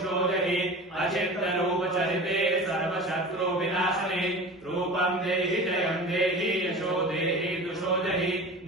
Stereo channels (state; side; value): normal; both; correlation 0.35